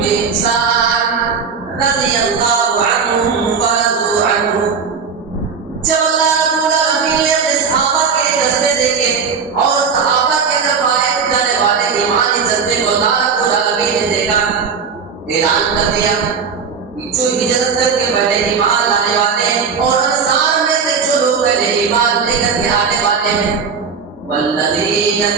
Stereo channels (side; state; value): left; quieter; 5.9 dB